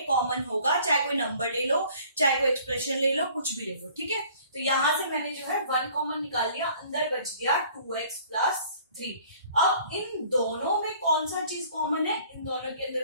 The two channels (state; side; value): inverted; both; correlation -0.54